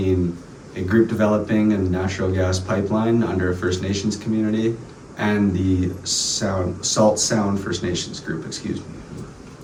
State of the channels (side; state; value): both; identical; correlation 1.00